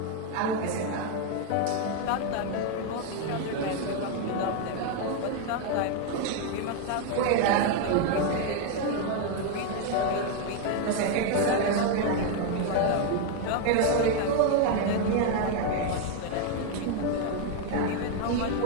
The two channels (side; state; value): both; different; correlation 0.01